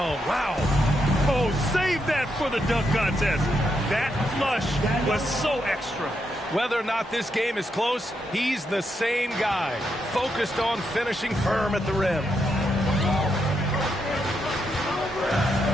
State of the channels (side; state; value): both; normal; correlation 0.81